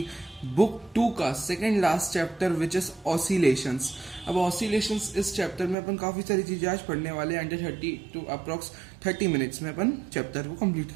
बुक 2 का second last chapter which is oscillations. अब ऑसिलेशंस इस चैप्टर में अपन काफ़ी सारी चीज़ें आज पढ़ने वाले हैं। अंडर 30 टू अप्रॉक्स 30 मिनट्स में अपन चैप्टर को कंप्लीट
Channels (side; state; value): left; drops out; at 5.8 s